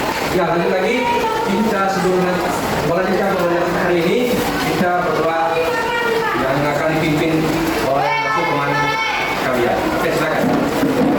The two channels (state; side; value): identical; both; correlation 1.00